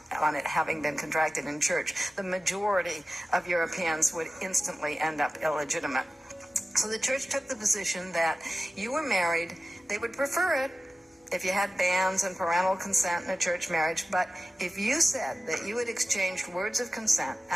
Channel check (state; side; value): normal; both; correlation 0.95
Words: it having been contracted in church, the majority of Europeans would instantly end up illegitimate. So the church took the position that you were married. They would prefer it if you had banns and parental consent in a church marriage, but if you said that you had exchanged words of consent